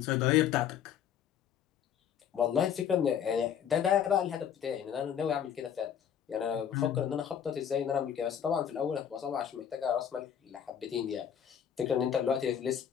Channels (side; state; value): right; quieter; 8.8 dB